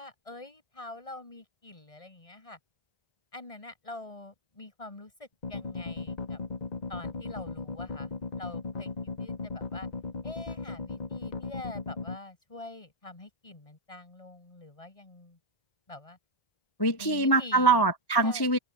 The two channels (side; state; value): right; late; 1.1 ms